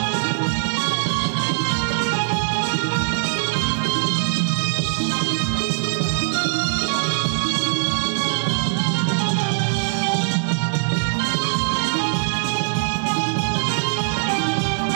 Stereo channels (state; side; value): silent; left; digital silence